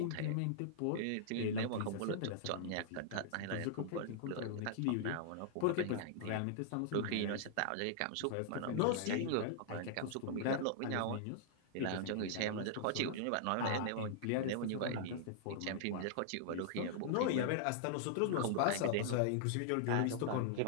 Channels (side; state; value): both; different; correlation -0.01